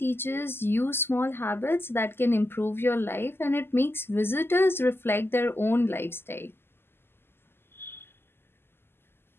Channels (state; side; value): late; right; 0.11 ms